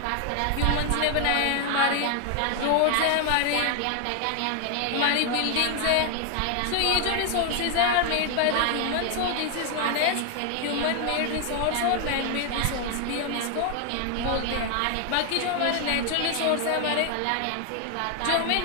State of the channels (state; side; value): different; both; correlation 0.01